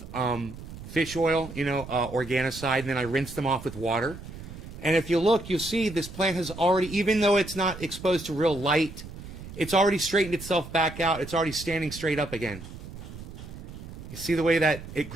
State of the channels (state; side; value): noise; right; rumble, 13 dB below the sound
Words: fish oil, organicide, and then I rinsed them off with water. And if you look, you'll see this plant has already, even though it's not exposed to real light, it's already straightened itself back out. It's already standing straight up again. You see the way that it